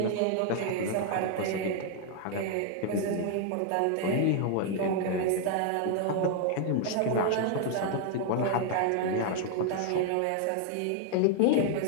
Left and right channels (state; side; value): different; both; correlation 0.00